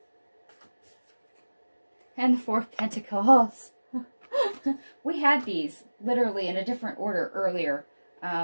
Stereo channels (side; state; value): both; inverted; correlation -1.00